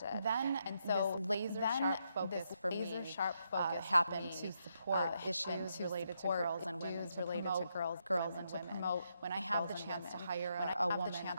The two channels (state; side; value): inverted; both; correlation -0.79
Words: And so laser sharp focus for me happened to support issues related to girls and women, girls and women. When I have the chance to hire a woman,